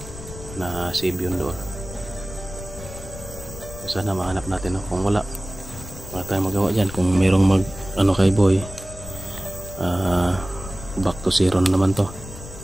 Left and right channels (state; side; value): noise; left; rumble, 13 dB below the sound